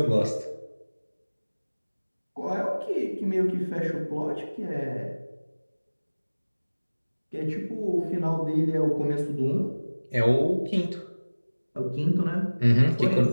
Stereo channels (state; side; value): inverted; both; correlation -1.00